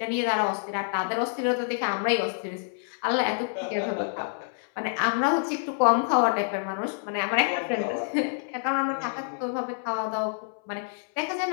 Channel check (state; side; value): silent; right; 60 dB below the other